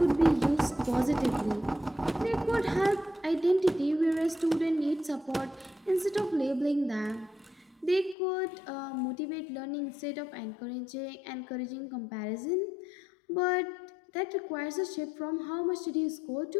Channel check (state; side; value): drops out; right; at 8.2 s